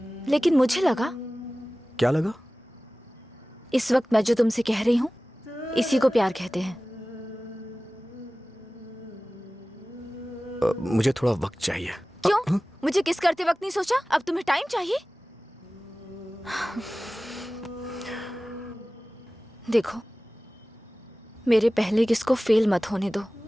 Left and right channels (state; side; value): normal; both; correlation 0.97